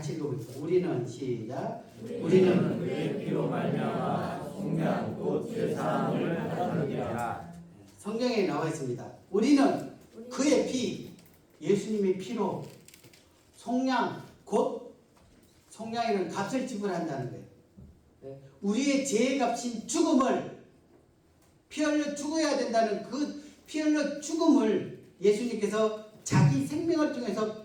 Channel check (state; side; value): identical; both; correlation 1.00